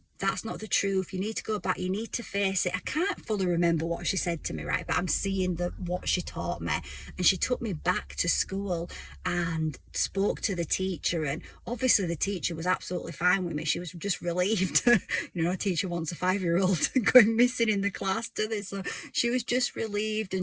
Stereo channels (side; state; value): both; identical; correlation 1.00